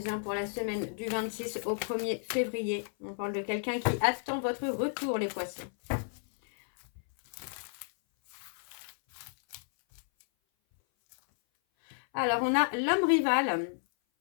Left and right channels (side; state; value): right; silent; 56 dB below the other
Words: pour la semaine du 26 au 1er février. On parle de quelqu'un qui attend votre retour, les poissons. Alors, on a l'homme rival.